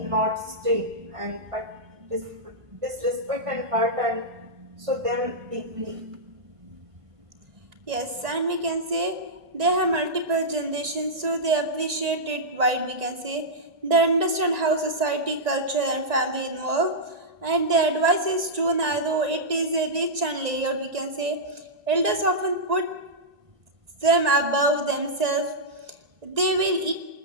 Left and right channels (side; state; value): left; late; 1.9 ms